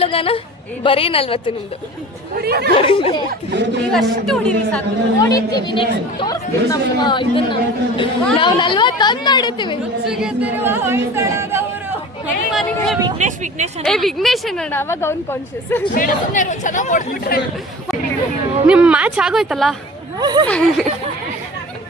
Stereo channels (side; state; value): both; normal; correlation 0.39